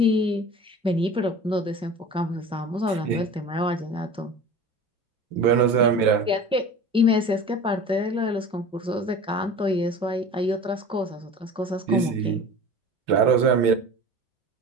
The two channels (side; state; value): both; normal; correlation 0.38